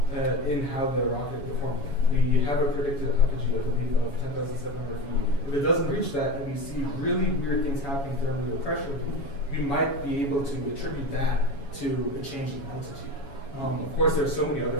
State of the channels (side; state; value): right; late; 7.2 ms